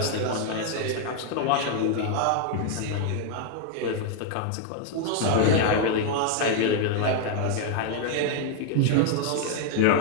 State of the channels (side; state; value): both; different; correlation 0.00